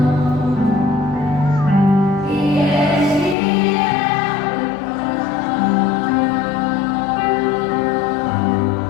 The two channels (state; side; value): drops out; right; at 3.4 s